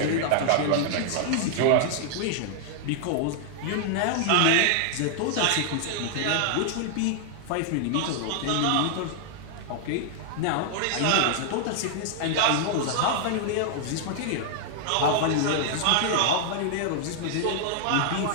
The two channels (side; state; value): both; different; correlation -0.01